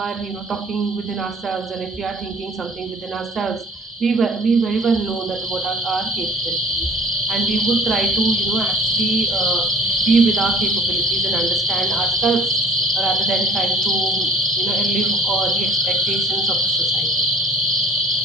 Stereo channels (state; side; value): normal; both; correlation 0.52